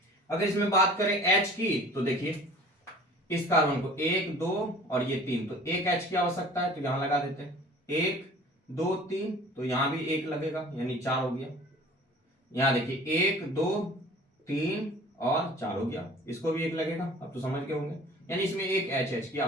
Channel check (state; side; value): normal; both; correlation 0.46